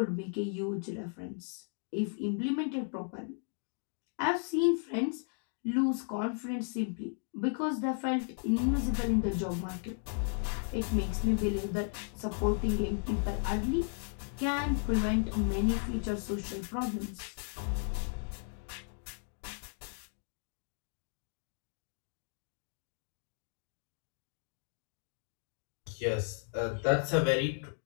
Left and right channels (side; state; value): right; silent; 54 dB below the other